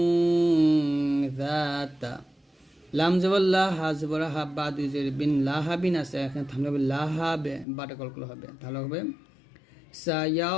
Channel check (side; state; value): right; drops out; at 7.7 s